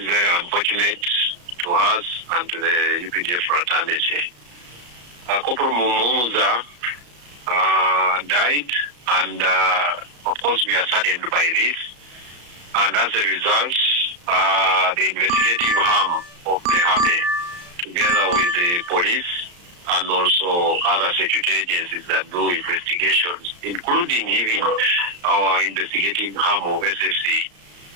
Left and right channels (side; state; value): left; late; 34 ms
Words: very unfortunate to us and to the UPDF fraternity. Corporal Muhumuza died, and of course we are saddened by this. And as a result, the investigative arm of the Army, together with the police and also other security agencies that do investigations, including even our investigative arm of SFC,